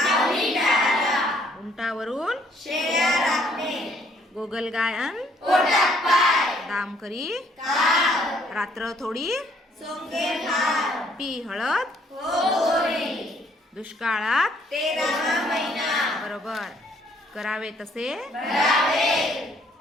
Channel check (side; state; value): both; normal; correlation 0.65